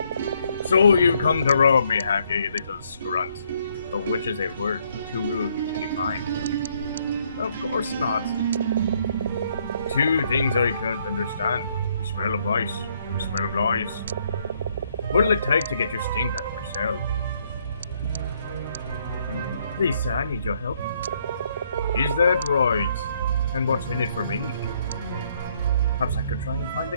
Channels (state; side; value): inverted; both; correlation -0.70